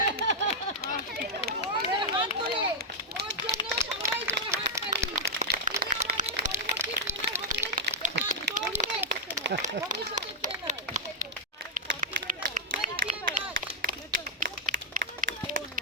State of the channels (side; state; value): both; normal; correlation -0.04